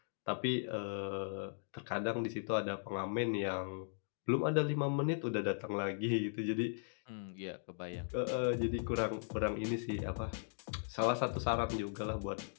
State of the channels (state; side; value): silent; right; digital silence